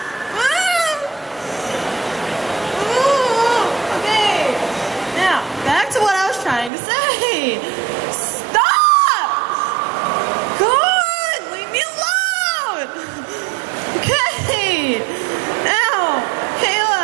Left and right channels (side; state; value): left; drops out; at 6.7 s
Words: Okay, now, back to what I was trying to say. Stop! God, leave me alone! Okay, now,